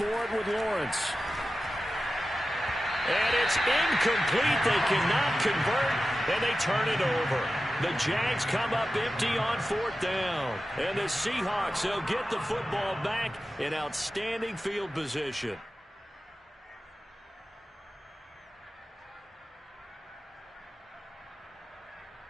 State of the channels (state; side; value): normal; both; correlation 0.93